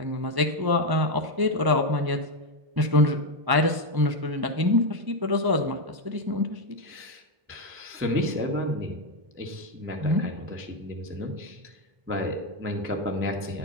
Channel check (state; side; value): late; left; 1.1 ms